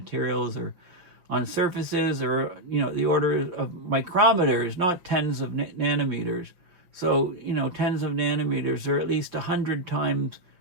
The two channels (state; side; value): late; left; 5.7 ms